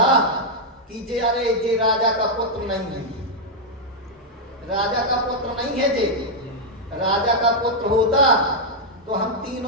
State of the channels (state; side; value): normal; both; correlation -0.03